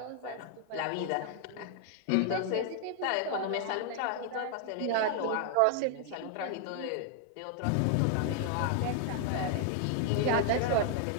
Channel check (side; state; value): both; different; correlation 0.00